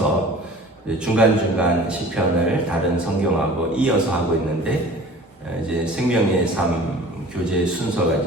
중간중간 시편을 다른 성경하고 이어서 하고 있는데 이제 생명의 삶 교재 순서가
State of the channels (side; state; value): both; normal; correlation 0.44